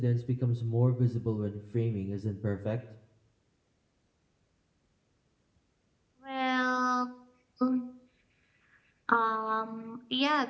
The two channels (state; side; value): identical; both; correlation 1.00